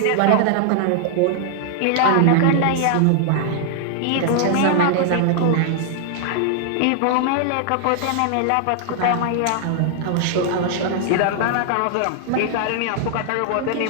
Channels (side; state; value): both; different; correlation -0.01